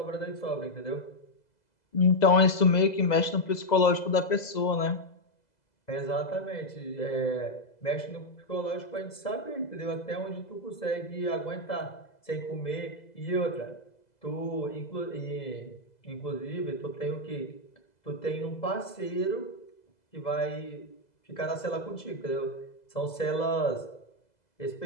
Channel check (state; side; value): late; right; 2.0 ms